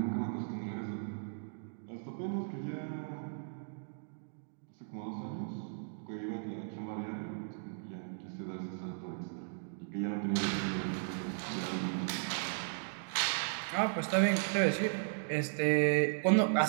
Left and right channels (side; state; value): left; silent; digital silence